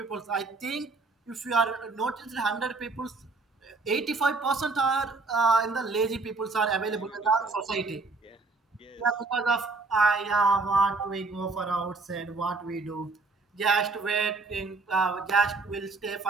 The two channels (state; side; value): quieter; left; 3.8 dB